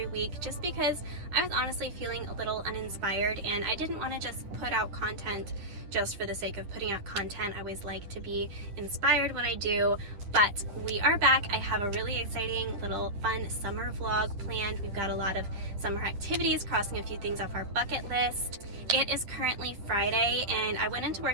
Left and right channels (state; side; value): late; left; 10 ms